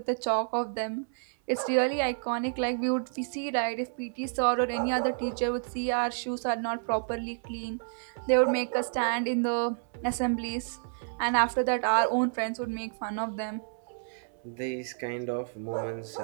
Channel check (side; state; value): left; silent; 58 dB below the other